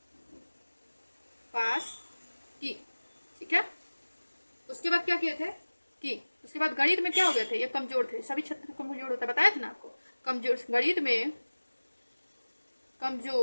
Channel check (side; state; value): both; inverted; correlation -1.00